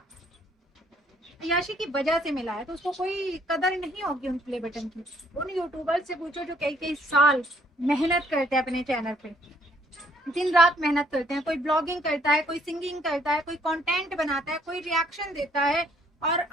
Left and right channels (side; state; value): both; normal; correlation 0.64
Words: अय्याशी की वजह से मिला है। तो उसको कोई कदर नहीं होगी उन प्ले बटन की। उन यूट्यूबर से पूछो जो कई कई साल मेहनत करते हैं अपने चैनल पे, दिन रात मेहनत करते हैं। कोई ब्लॉगिंग करता है, कोई सिंगिंग करता है, कोई कंटेंट बनाता है, कोई रिएक्शन देता है, और